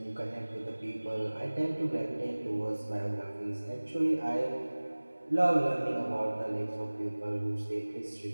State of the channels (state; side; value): inverted; both; correlation -1.00